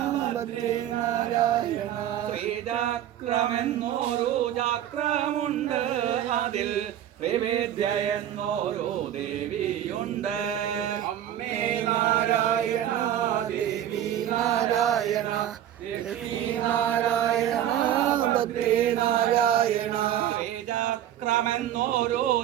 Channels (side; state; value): left; quieter; 11.2 dB